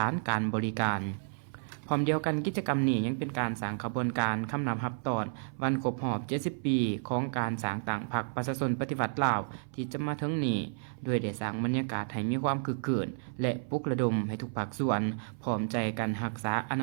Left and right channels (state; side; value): silent; left; 55 dB below the other